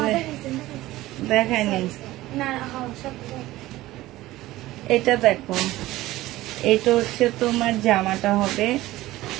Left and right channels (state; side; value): quieter; left; 16.9 dB